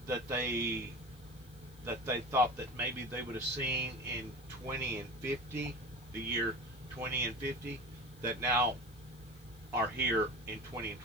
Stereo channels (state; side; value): noise; left; hiss, 25 dB below the sound